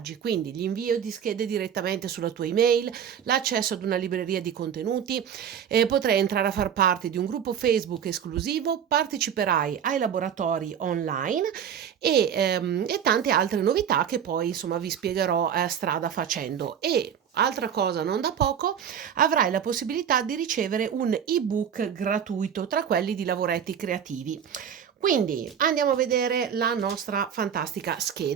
Quindi, l'invio di schede direttamente sulla tua email, l'accesso ad una libreria di contenuti, potrai entrare a far parte di un gruppo Facebook esclusivo, parteciperai ai laboratori online e tante altre novità che poi insomma vi spiegherò strada facendo. E altra cosa non da poco, avrai la possibilità di ricevere un ebook gratuito tra quelli di lavoretti creativi. Quindi andiamo a vedere la nostra fantastica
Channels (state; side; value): quieter; left; 8.4 dB